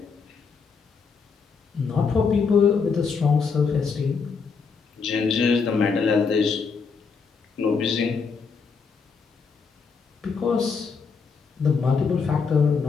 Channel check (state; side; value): quieter; right; 5.3 dB